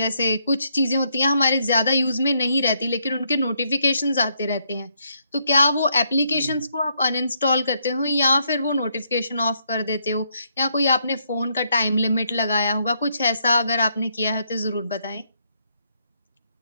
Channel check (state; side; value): inverted; both; correlation -0.75